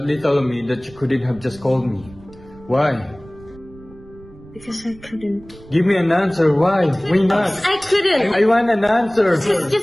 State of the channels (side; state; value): right; noise; rumble, 22 dB below the sound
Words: of me that you couldn't have just called me. Why? Because I couldn't. Give me an answer, why? Why not? I couldn't! I want an answer!